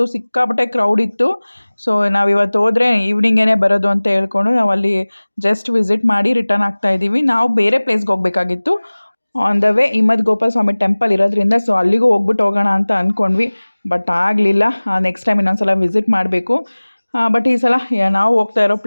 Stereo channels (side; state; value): both; inverted; correlation -1.00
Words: ಸಿಕ್ಕಾಪಟ್ಟೆ ಕ್ರೌಡ್ ಇತ್ತು. ಸೊ ನಾವು ಇವತ್ತು ಹೋದರೆ ಈವ್ನಿಂಗೇ ಬರೋದು ಅಂತ ಹೇಳ್ಕೊಂಡು ನಾವು ಅಲ್ಲಿ ಜಸ್ಟ್ ವಿಸಿಟ್ ಮಾಡಿ ರಿಟರ್ನ್ ಆಗ್ತಾ ಇದ್ದೀವಿ. ನಾವು ಬೇರೆ ಪ್ಲೇಸ್ಗೆ ಹೋಗಬೇಕಾಗಿತ್ತು. On the way Himavad Gopala Swamy temple ಇರೋದ್ರಿಂದ ಸೊ ಅಲ್ಲಿಗೂ ಹೋಗ್ಬಿಟ್ಟು ಹೋಗೋಣ ಅಂತ ಅಂದ್ಕೊಂಡ್ವಿ. ಬಟ್ ಆಗಲಿಲ್ಲ. ನೆಕ್ಸ್ಟ್ ಟೈಮ್ ಇನ್ನೊಂದು ಸಲ ವಿಸಿಟ್ ಮಾಡಬೇಕು. ಬಟ್ ಈ ಸಲ ನಾವು ಹೋಗ್ತಾ ಇರೋ